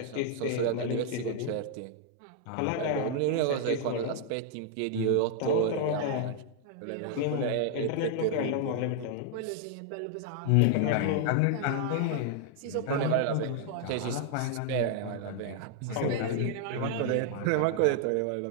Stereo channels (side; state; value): both; different; correlation 0.00